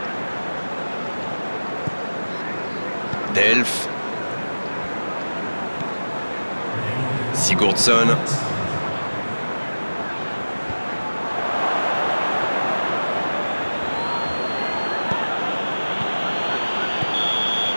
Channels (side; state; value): both; inverted; correlation -1.00